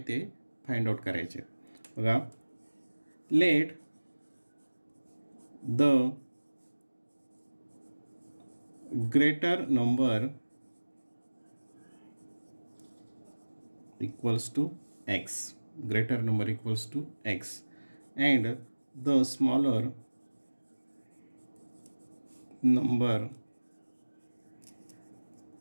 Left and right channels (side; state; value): both; inverted; correlation -1.00